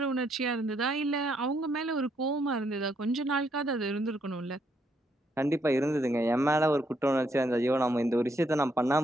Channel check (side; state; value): both; normal; correlation 0.74